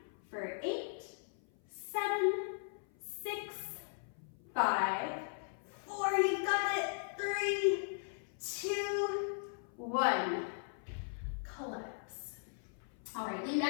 for 8, 7, 6, 5, 4, you got it. 3, 2, 1. Collapse. All right, lean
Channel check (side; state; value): right; silent; 52 dB below the other